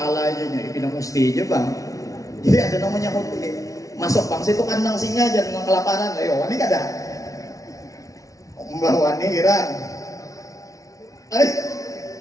aja nih, pindah mesti aja bang. Jadi ada namanya hotel. Masuk bang situ kandang singa aja dengan kelaparan. Ayo, ini kada. Mbak Wani Iran.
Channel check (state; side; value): late; right; 0.17 ms